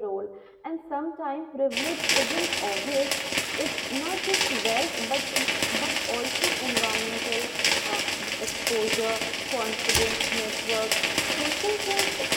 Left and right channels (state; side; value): identical; both; correlation 1.00